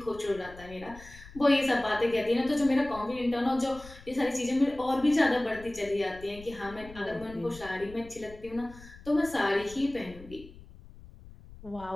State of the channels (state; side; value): noise; left; rumble, 19 dB below the sound